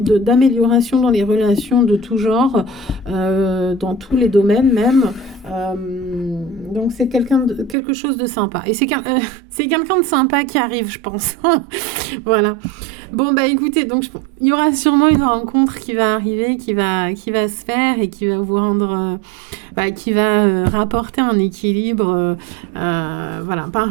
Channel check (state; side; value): drops out; left; at 7.8 s